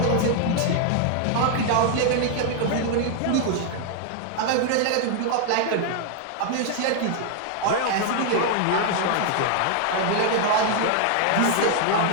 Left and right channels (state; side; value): different; both; correlation 0.00